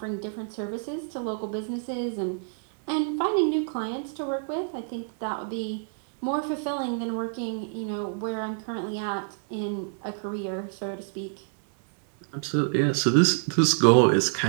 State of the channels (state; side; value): silent; left; digital silence